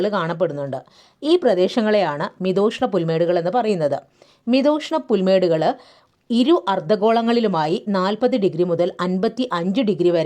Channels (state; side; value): identical; both; correlation 1.00